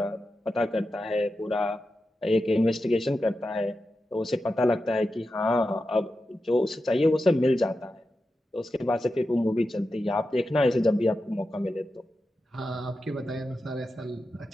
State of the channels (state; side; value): normal; both; correlation 0.90